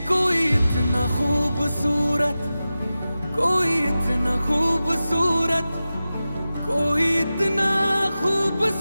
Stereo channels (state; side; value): inverted; both; correlation -0.94